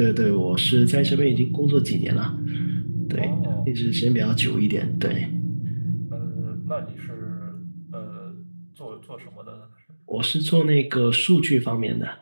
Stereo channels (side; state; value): both; inverted; correlation -1.00